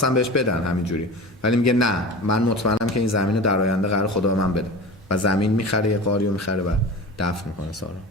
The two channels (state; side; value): normal; both; correlation 0.33